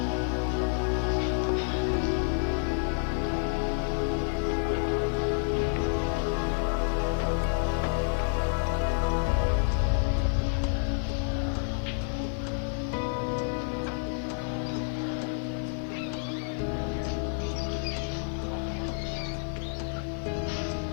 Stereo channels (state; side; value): silent; right; digital silence